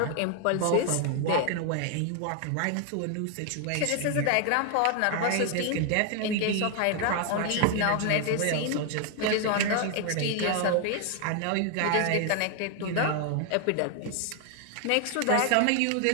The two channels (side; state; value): both; different; correlation 0.00